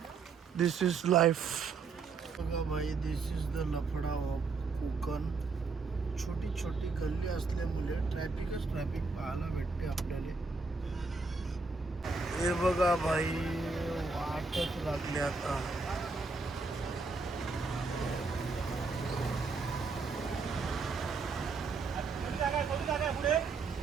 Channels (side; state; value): left; quieter; 4.2 dB